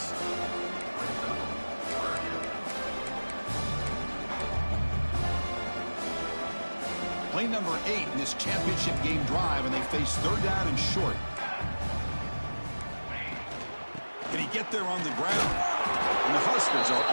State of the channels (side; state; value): both; inverted; correlation -1.00